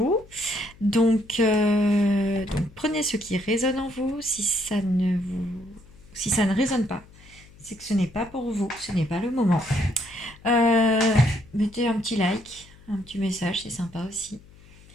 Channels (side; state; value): left; noise; hum, 24 dB below the sound